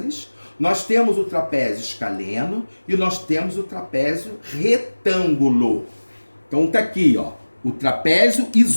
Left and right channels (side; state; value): both; inverted; correlation -1.00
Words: nós temos o trapézio escaleno e nós temos o trapézio retângulo. Então tá aqui, ó, o trapézio